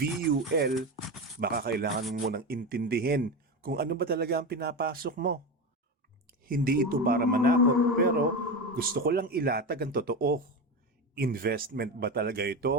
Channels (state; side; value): normal; both; correlation 0.20